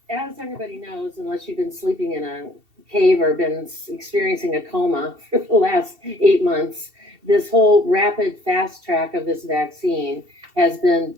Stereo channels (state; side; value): late; left; 2.7 ms